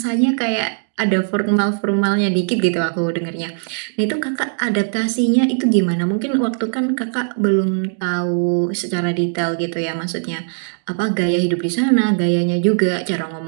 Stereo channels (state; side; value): silent; left; digital silence